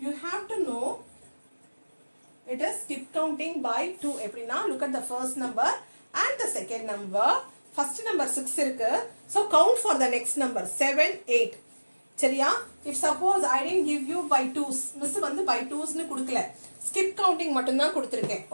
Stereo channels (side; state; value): both; inverted; correlation -1.00